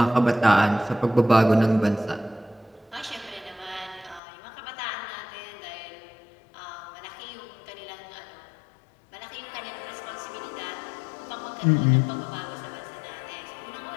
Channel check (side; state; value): right; drops out; at 4.2 s